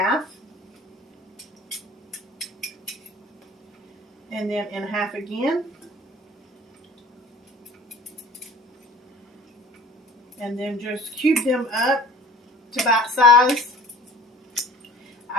And then in half again. And then just cube them up to bite size.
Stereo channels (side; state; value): both; normal; correlation 0.46